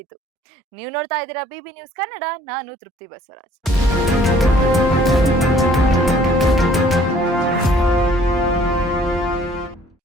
ನೀವು ನೋಡ್ತಾ ಇದ್ದೀರಾ ಬಿಬಿ ನ್ಯೂಸ್ ಕನ್ನಡ. ನಾನು ತೃಪ್ತಿ ಬಸವರಾಜ್.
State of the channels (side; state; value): both; normal; correlation 0.57